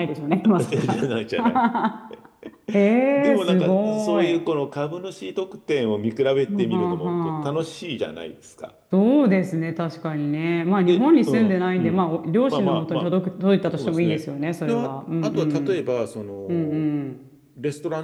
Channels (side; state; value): both; identical; correlation 1.00